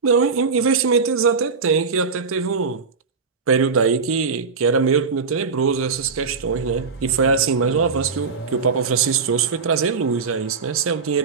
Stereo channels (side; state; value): left; quieter; 5.1 dB